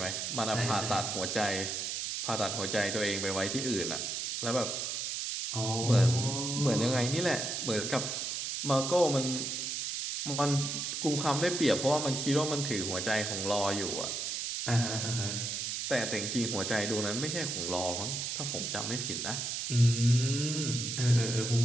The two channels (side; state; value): right; noise; hiss, 2 dB below the sound